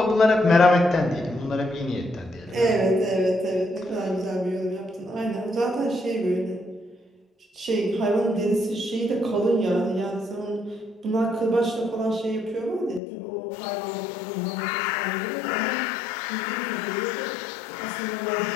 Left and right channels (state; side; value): drops out; right; at 13.0 s